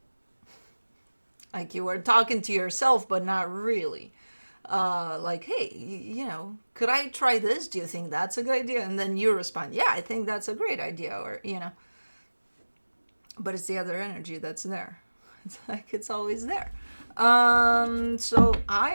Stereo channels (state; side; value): inverted; both; correlation -1.00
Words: like you were talking to yourself, but not really. Like, hey, could I try this? Do you think that's a good idea? And then you respond, yeah, I think that's a great idea, or, but it's the other energy that's there. It's like it's always there. So I